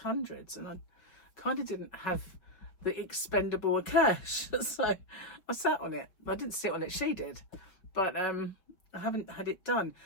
and I kind of didn't have the expendable cash, so I sat on it. I didn't sit on it, she did, but I haven't had it done.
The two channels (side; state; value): right; late; 5.4 ms